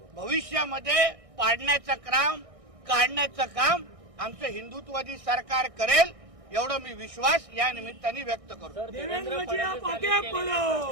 भविष्यामध्ये पाडण्याचं काम, काढण्याचं काम आमचं हिंदुत्ववादी सरकार करेल, एवढं मी विश्वास या निमित्ताने व्यक्त करतो. देवेंद्र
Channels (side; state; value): left; late; 1.6 ms